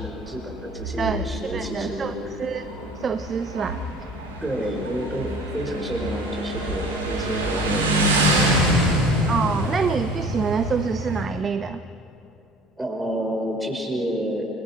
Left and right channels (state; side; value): normal; both; correlation 0.47